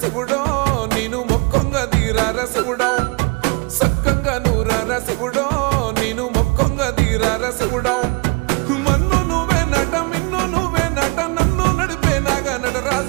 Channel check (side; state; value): left; quieter; 29.3 dB